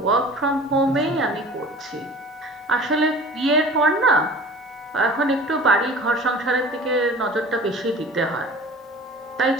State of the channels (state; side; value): normal; both; correlation 0.42